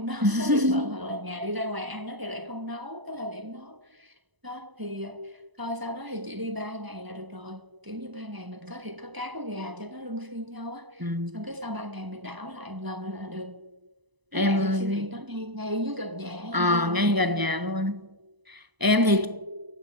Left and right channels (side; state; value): left; late; 1.0 ms